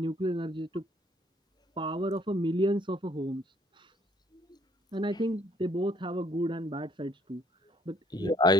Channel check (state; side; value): normal; both; correlation 0.63